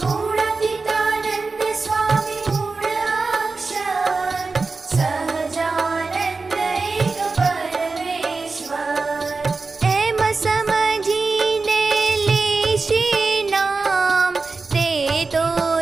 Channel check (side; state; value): left; quieter; 4.0 dB